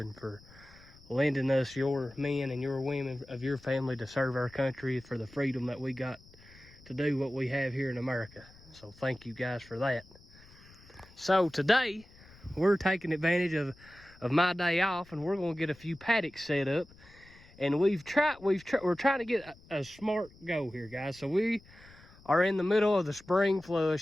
for lending us your men and your women of your family to serve our country for the freedom that we got to do what we have here in America. So thank you guys for that. So today we're taking advantage of my day off, and we're going to get a few paddocks set up. And we're trying to get a smart go here, guys. So we are in the middle of the spring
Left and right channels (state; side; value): noise; left; rumble, 24 dB below the sound